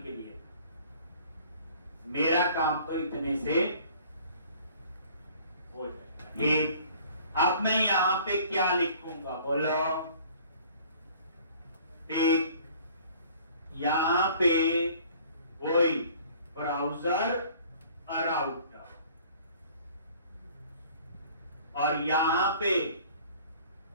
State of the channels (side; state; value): both; inverted; correlation -0.52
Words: लिए मेरा काम तो इतने से हो जाएगा। अब मैं यहां पे क्या लिखूंगा, बोलो। यहां पे वही ब्राउजर राउटर, और यहां पे